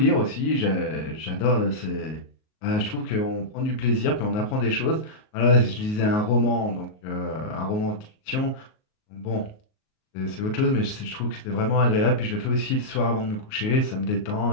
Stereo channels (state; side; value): late; right; 38 ms